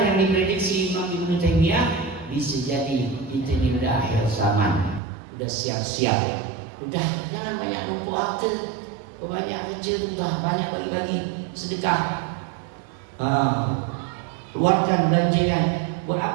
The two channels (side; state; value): left; drops out; at 5.0 s